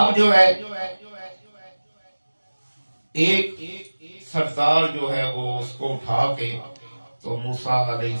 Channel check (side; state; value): both; inverted; correlation -1.00